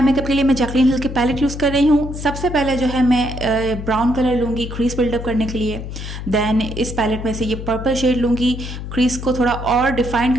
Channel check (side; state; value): left; noise; hum, 8 dB below the sound